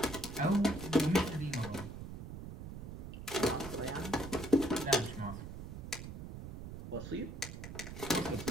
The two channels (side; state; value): right; noise; rumble, 9 dB below the sound